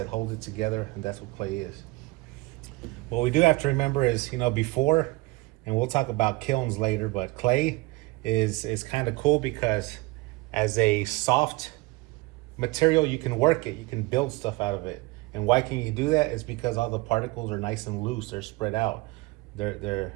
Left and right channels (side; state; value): left; quieter; 22.6 dB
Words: hold it together, and that's what clay is. What we do have to remember is, before, and we'll talk about kilns later, but clay is kind of cool because as a soft material, you can work it, you can build stuff out of it. And why can you do that? Is because all the particles are nice and loose, they're spread out.